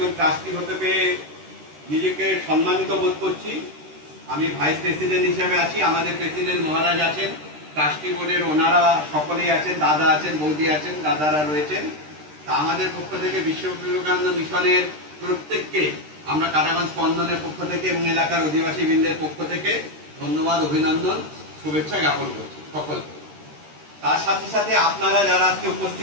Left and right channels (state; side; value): late; left; 13 ms